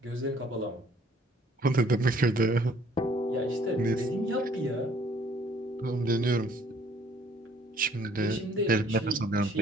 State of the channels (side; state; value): both; normal; correlation 0.60